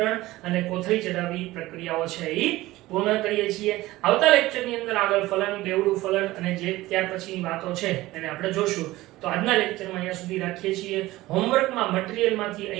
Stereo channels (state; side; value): quieter; left; 17.8 dB